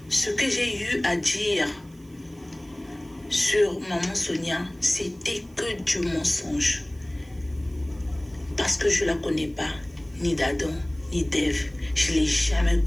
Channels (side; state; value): right; noise; hiss, 30 dB below the sound